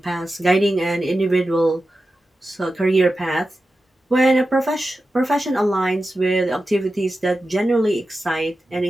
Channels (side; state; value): both; normal; correlation 0.92